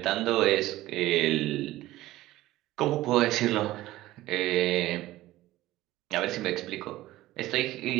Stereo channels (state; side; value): quieter; left; 16.4 dB